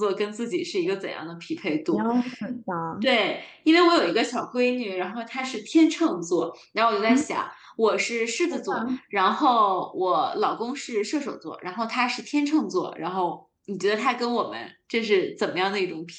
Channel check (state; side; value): identical; both; correlation 1.00